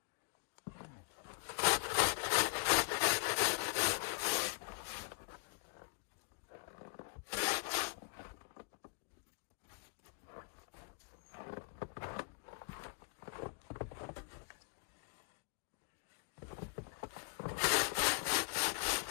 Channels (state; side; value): quieter; right; 29.9 dB